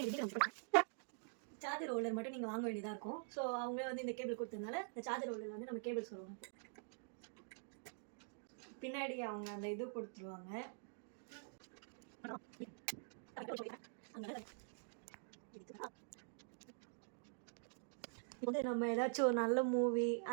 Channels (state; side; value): silent; left; digital silence